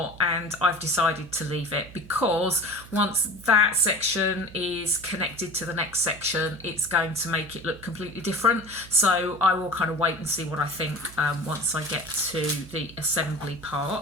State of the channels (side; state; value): right; noise; hum, 18 dB below the sound